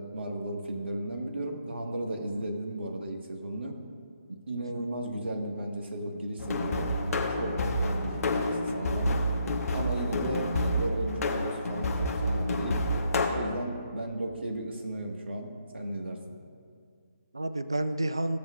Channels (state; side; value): inverted; both; correlation -0.75